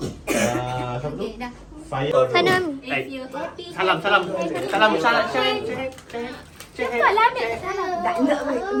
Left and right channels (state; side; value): identical; both; correlation 1.00